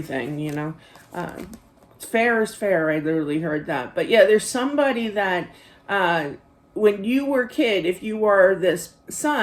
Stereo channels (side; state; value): both; identical; correlation 1.00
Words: you know. Fair is fair. I literally heard that. But yeah, there's somebody that when you were a kid, if you were this